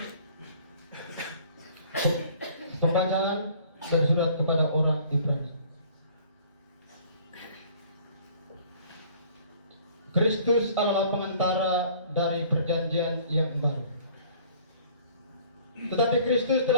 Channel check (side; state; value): both; inverted; correlation -0.53